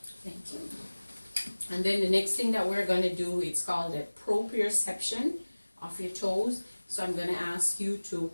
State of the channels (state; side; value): inverted; both; correlation -1.00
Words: Thank you. And then the next thing that we're going to do, it's called a proprioception of your toes. So I'm going to ask you to